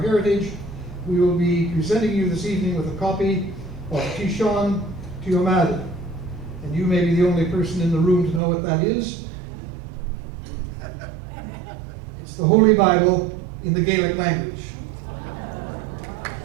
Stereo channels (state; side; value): drops out; left; at 8.4 s